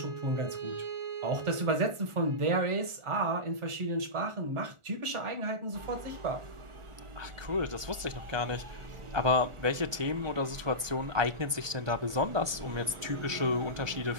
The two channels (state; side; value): late; left; 1.2 ms